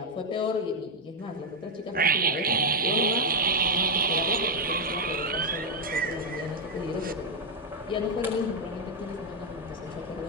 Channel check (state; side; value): normal; both; correlation 0.01